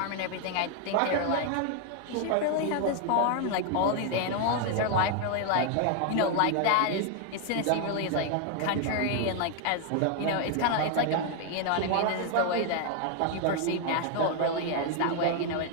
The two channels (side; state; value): both; different; correlation 0.00